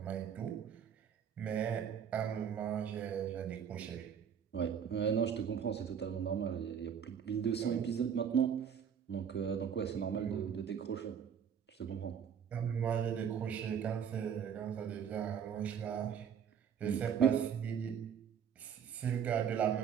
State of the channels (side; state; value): left; quieter; 7.9 dB